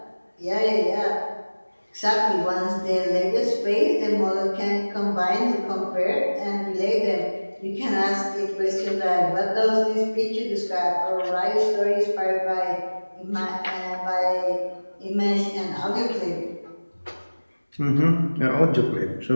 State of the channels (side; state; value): both; inverted; correlation -1.00